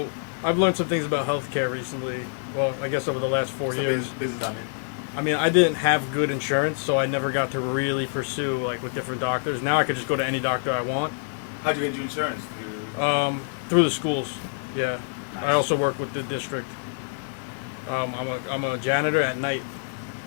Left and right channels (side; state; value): right; silent; 61 dB below the other